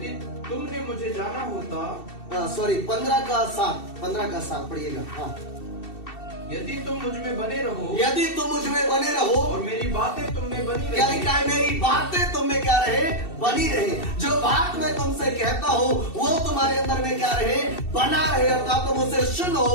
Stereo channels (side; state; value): right; late; 2.7 ms